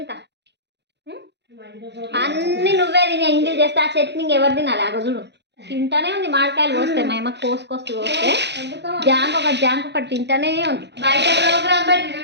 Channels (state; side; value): late; left; 0.50 ms